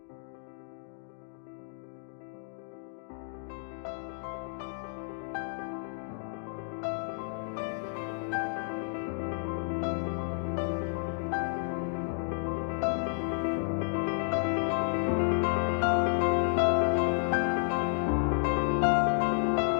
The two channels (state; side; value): silent; right; digital silence